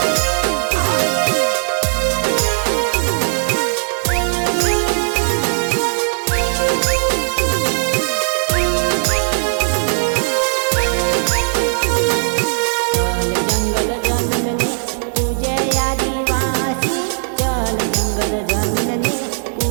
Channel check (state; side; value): silent; left; digital silence